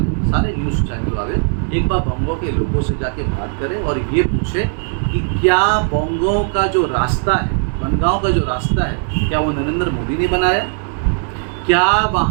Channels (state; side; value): silent; left; 59 dB below the other